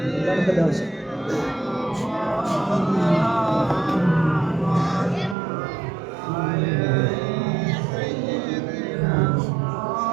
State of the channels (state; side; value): drops out; left; at 5.4 s